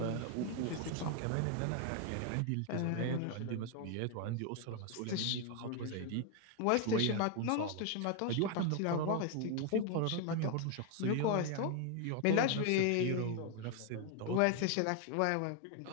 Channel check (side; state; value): both; different; correlation 0.01